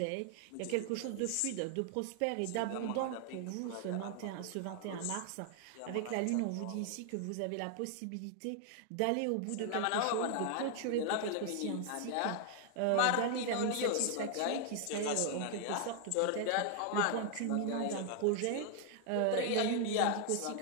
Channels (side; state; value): both; different; correlation 0.00